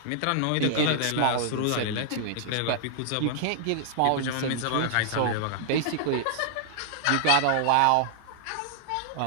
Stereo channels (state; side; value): different; both; correlation -0.01